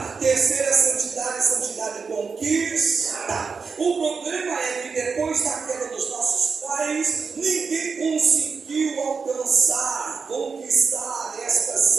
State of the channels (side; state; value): left; quieter; 5.2 dB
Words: Terceira santidade, santidade conquistada. O problema é que depois da queda dos nossos pais, ninguém conseguiu alcançar, conquistar esta